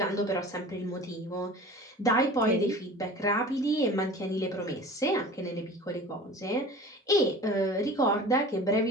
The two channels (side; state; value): both; normal; correlation 0.40